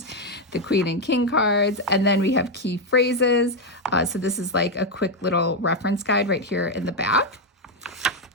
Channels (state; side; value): normal; both; correlation 0.04